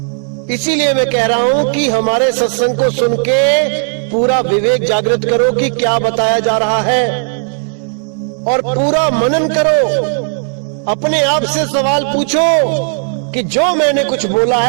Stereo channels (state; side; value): silent; left; 71 dB below the other